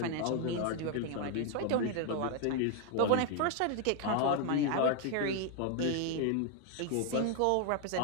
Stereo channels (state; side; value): different; both; correlation 0.00